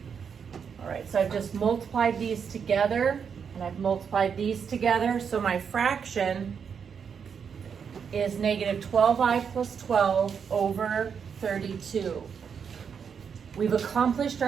All right, so I've just multiplied these together, and I've multiplied these together, so my fraction is negative 12i plus 12 over 32. We've accomplished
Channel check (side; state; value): left; quieter; 6.8 dB